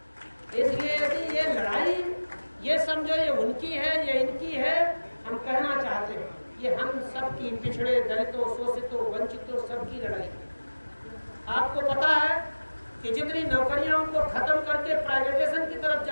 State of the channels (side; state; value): both; inverted; correlation -1.00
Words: इसलिए यदि ये लड़ाई, ये समझो ये उनकी है, ये इनकी है, हम कहना चाहते हैं ये हम सबकी, पिछड़े, दलितों, शोषितों, वंचितों, सबकी लड़ाई। आपको पता है कि जितनी नौकरियां उनको खत्म करके प्राइवेटाइजेशन की तरफ